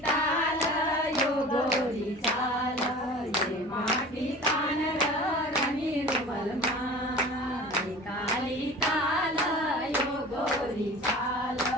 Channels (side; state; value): both; normal; correlation 0.40